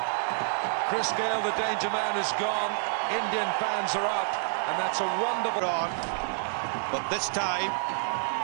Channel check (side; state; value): left; silent; digital silence